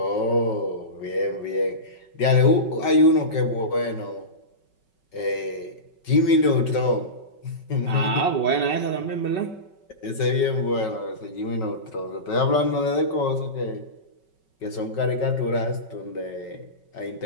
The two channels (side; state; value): right; late; 5.3 ms